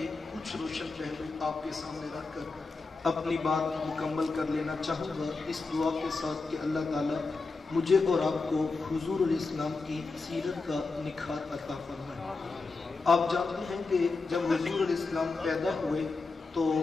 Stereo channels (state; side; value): quieter; right; 3.9 dB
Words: کچھ روشن پہلو آپ کے سامنے رکھ کر اپنی بات مکمل کر لینا چاہوں گا، اس دعا کے ساتھ کہ اللہ تعالیٰ مجھے اور آپ کو حضور علیہ السلام کی سیرت کا نکھار عطا فرمائے۔ آپ جانتے ہیں کہ جب حضور علیہ السلام پیدا ہوئے تو